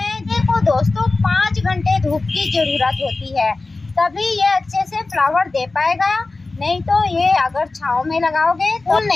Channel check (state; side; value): quieter; right; 3.4 dB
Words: देखो दोस्तों, 5 घंटे धूप की ज़रूरत होती है, तभी ये अच्छे से फ्लावर दे पाएगा। नहीं तो ये अगर छांव में लगाओगे तो